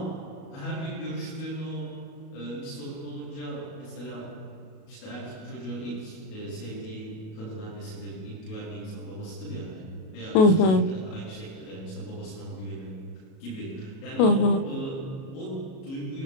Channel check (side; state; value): right; late; 37 ms